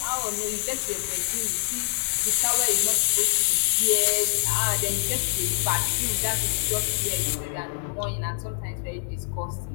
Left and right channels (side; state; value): right; silent; digital silence